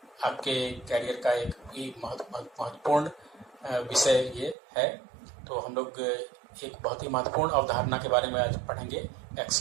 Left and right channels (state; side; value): drops out; left; at 4.5 s